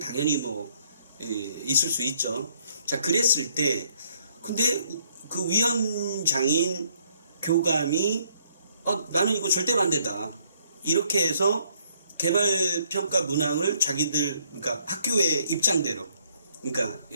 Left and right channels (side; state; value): both; inverted; correlation -0.66